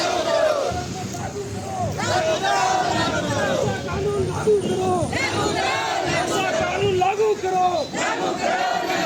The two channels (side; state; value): both; identical; correlation 1.00